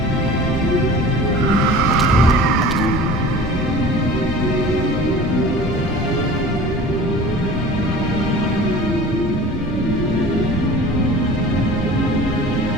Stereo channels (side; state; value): both; normal; correlation 0.41